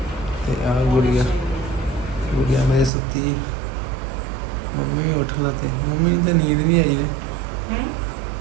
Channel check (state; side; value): drops out; left; at 2.9 s